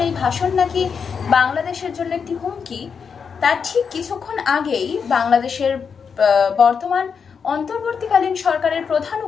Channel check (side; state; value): right; quieter; 6.2 dB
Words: এই ভাষণ নাকি বাংলাদেশের জন্য একটি হুমকি, তার ঠিক কিছুক্ষণ আগেই বাংলাদেশের বর্তমান অন্তর্বর্তীকালীন সরকারের প্রধান